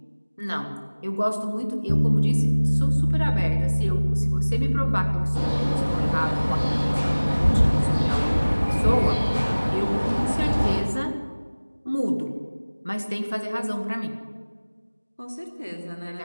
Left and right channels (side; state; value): both; inverted; correlation -1.00